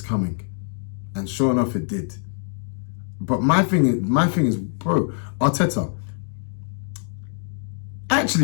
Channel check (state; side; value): silent; right; 58 dB below the other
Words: coming. And sure enough, it did. But my thing is, bro, Arteta.